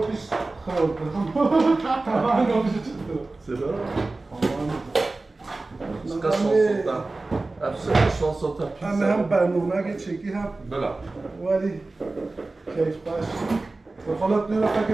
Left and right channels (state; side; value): quieter; left; 3.3 dB